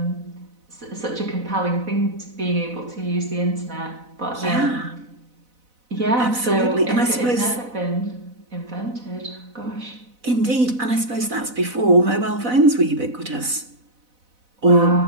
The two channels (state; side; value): late; left; 4.0 ms